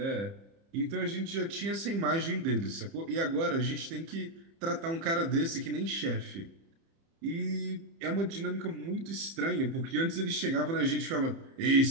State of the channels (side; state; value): left; late; 30 ms